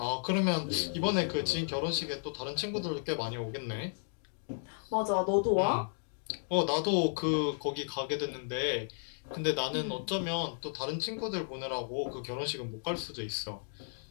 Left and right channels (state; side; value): silent; right; digital silence